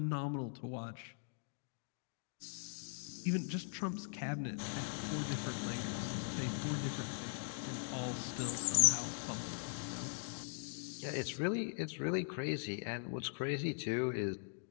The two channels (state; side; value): silent; right; digital silence